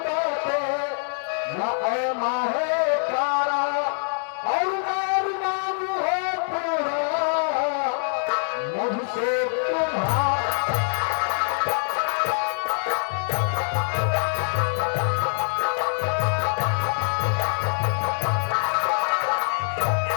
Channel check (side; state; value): right; silent; digital silence